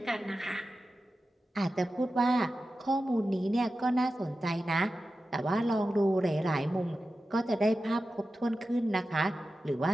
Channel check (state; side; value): normal; both; correlation 0.93